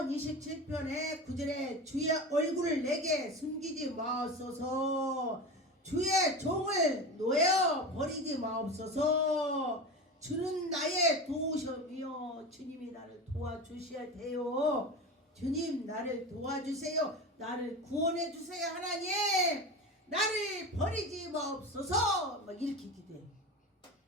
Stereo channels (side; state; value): both; normal; correlation 0.27